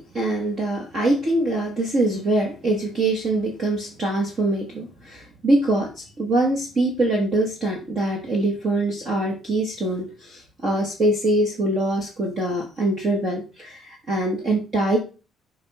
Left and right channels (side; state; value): both; normal; correlation 0.64